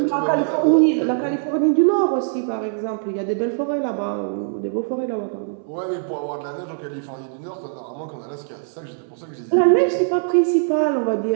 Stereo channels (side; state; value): left; silent; 64 dB below the other